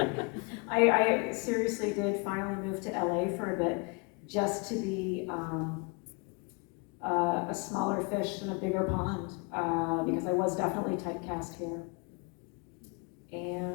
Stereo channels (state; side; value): quieter; right; 31.3 dB